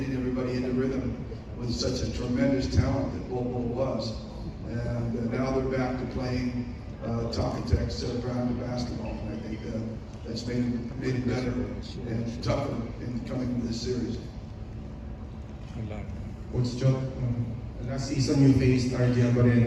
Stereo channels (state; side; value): identical; both; correlation 1.00